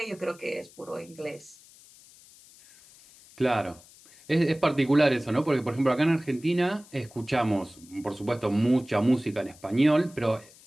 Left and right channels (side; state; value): left; noise; hiss, 24 dB below the sound